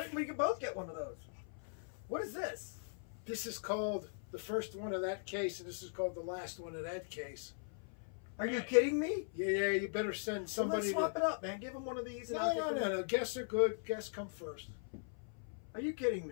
didn't we both get one of those? What is this? This is called the first one of that case, and this is called the last one of that case. Are you kidding me? Yeah, you better send somebody. Well, let's swap it up, man. Give him one of these. And No. Guests are good. Guests come first. Are you kidding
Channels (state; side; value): silent; right; 51 dB below the other